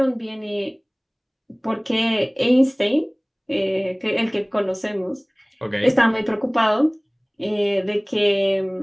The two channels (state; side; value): identical; both; correlation 1.00